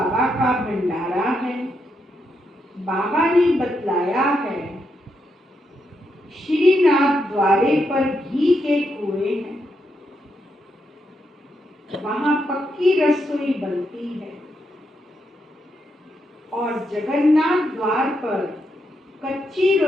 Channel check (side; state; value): both; normal; correlation 0.81